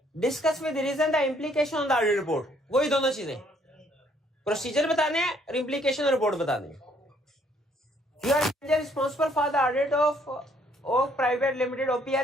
discuss with reason the implication on the audit report. वही दोनों चीजें, प्रोसीजर बताने हैं और इम्प्लीकेशन और रिपोर्ट बताने हैं। You are responsible for the audit of Oak private limited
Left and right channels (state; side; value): normal; both; correlation 0.65